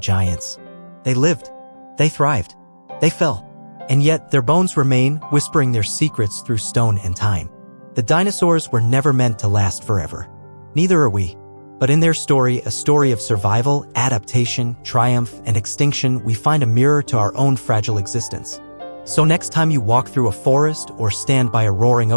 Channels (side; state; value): both; inverted; correlation -1.00